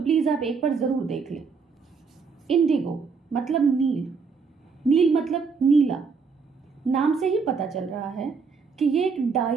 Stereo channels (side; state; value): left; quieter; 5.2 dB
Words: आप एक बार ज़रूर देख लें। इंडिगो मतलब नील, नील मतलब नीला। नाम से ही पता चल रहा है कि ये एक